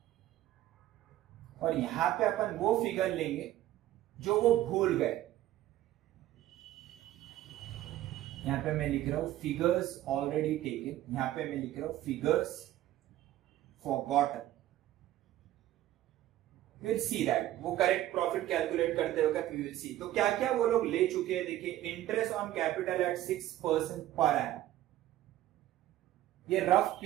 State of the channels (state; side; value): quieter; left; 14.1 dB